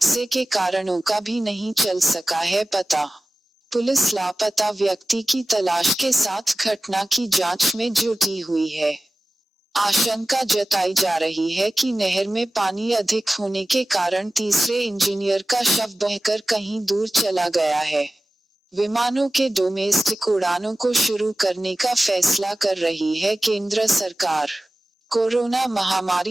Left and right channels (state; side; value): normal; both; correlation 0.96